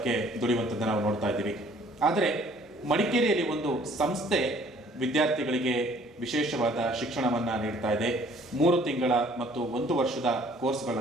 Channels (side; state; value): both; normal; correlation 0.57